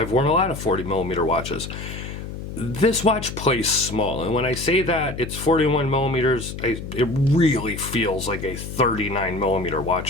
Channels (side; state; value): left; noise; hum, 9 dB below the sound